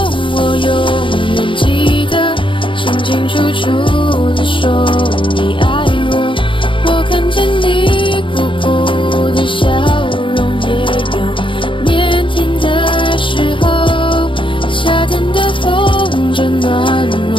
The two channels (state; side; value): late; right; 0.25 ms